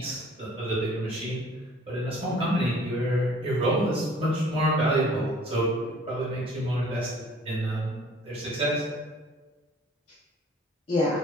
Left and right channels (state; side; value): normal; both; correlation 0.53